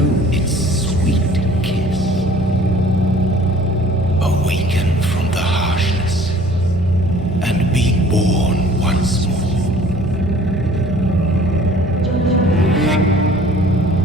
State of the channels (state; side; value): noise; right; hum, 14 dB below the sound